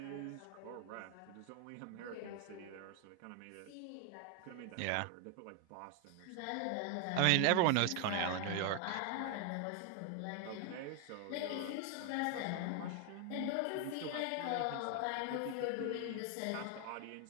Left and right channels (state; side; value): different; both; correlation 0.01